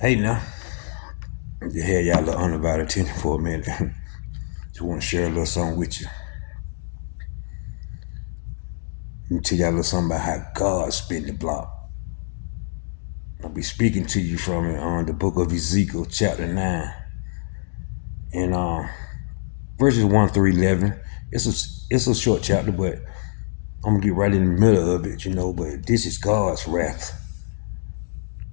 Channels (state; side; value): silent; right; digital silence